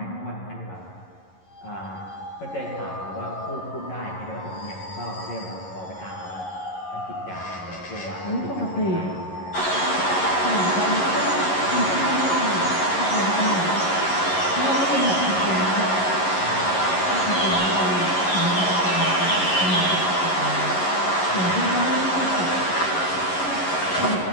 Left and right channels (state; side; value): late; right; 11 ms